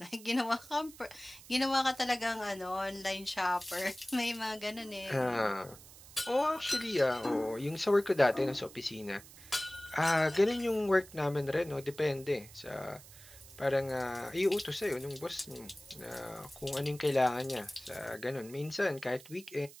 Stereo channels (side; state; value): right; noise; hiss, 19 dB below the sound